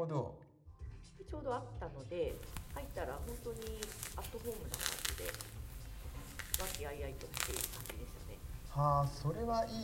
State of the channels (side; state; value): both; identical; correlation 1.00